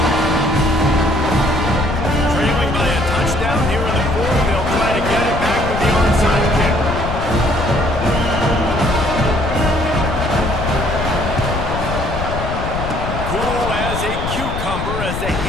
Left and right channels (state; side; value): noise; left; rumble, 4 dB below the sound